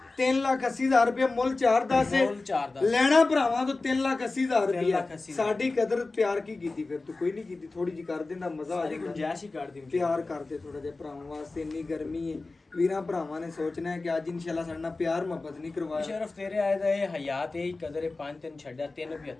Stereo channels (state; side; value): quieter; right; 3.5 dB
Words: 3,80,000 ਰੁਪਏ ਮੁੱਲ 4-10 ਹੈ ਮੁੱਲ 4-10 ਲੈਣਾ ਭਰਾਵਾਂ ਤੋਂ 3,80,000 ਰੁਪਏ 3,80,000 ਸਾਡੀ ਕਦਰ ਪਿਆਰ ਕੀ ਕੀਤੀ ਫਿਰ ਤੂੰ ਕੋਈ ਨਹੀਂ ਕੀਤੀ ਥੋੜੀ ਜੀ ਕਰ ਦਿੰਦਾ ਮਜ਼ਾ ਆ ਸਾਰੀ ਜਾਂਦਾ ਗੁੰਜਾਇਸ਼ ਹੀ ਕਰ ਦੀ ਪਿਆਰ ਕਰਦੇ ਥੋੜਾ ਜਿਹਾ ਭਰਾਵਾਂ ਵਾਸਤੇ ਇੰਨੀ ਗਰਮੀ ਹੈ ਵੀਰਾਂ ਭਰਾਵਾਂ ਨੇ ਸੋਚਣਾ ਹੈ ਕਿ ਅੱਜ ਇਨਸ਼ਾਅੱਲਾ ਸਾਡੇ ਨਾਲ ਪਿਆਰ ਮੁਹੱਬਤ ਨਹੀਂ ਕਰਵਾਇਆ ਮੁਸ਼ਰਫ ਤੇਰੇ ਆਏ ਦਾ ਇਹ ਹਯਾਤ ਇਹ ਕਦਰ ਹੈ 5-3 ਛੱਡਿਆ